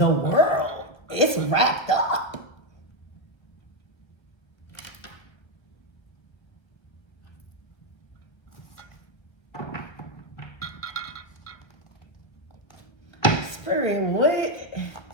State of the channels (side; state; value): right; late; 1.3 ms